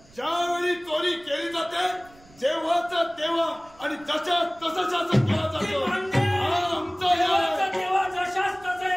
ज्यावेळी चोरी केली जाते जेव्हाच तेव्हा आणि जशा तसं शासन केलं जातं.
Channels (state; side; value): noise; right; rumble, 26 dB below the sound